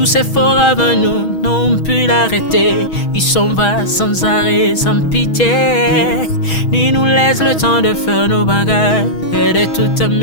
ces forts avant nous n'ont pu l'arrêter. Il s'en va sans arrêt, sans pitié, ni nous laisse le temps de faire nos bagages et de tout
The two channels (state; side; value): late; right; 6.2 ms